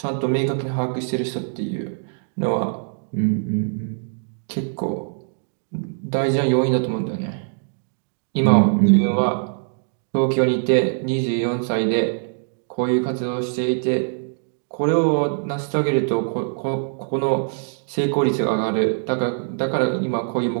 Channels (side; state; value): left; silent; digital silence